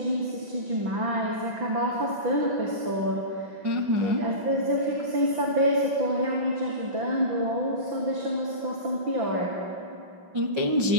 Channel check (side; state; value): left; late; 5.9 ms